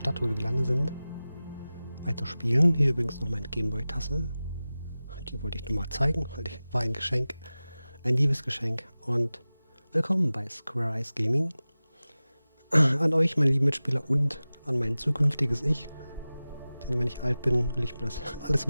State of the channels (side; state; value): both; inverted; correlation -0.96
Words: wo wir gelandet sind, weiterspielen. Hier übrigens noch meine Gameboy-Tasse. Die wollte ich nur mal zeigen, weil die war ein Geschenk. Ein Liebesgeschenk. Und willkommen bei Squareeyes Gaming. An euch, meine lieben Mitspieler, und an mein zukünftiges Ich. Denn wenn ich alt bin, will ich mir das alles